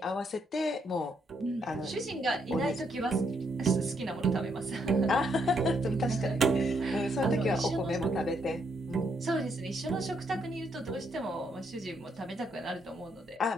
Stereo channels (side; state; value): both; normal; correlation 0.75